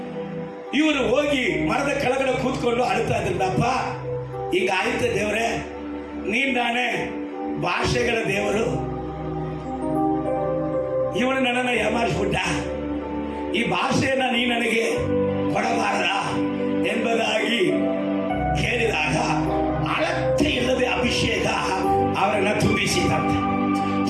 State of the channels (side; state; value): both; identical; correlation 1.00